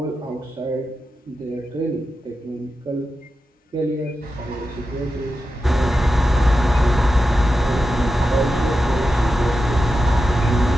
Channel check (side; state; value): both; normal; correlation 0.91